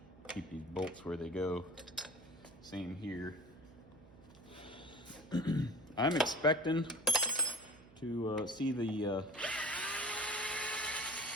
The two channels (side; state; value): right; noise; hum, 23 dB below the sound